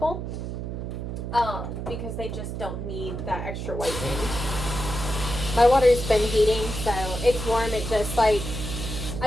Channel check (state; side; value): noise; right; hum, 5 dB below the sound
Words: because they just don't need that extra whitening. My water's been heating, so it's warm. It just like,